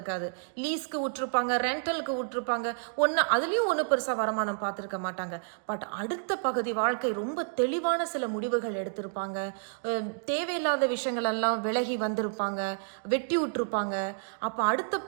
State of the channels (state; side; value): silent; left; digital silence